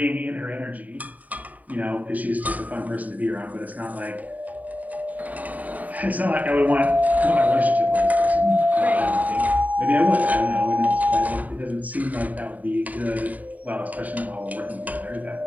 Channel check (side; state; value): left; late; 0.074 ms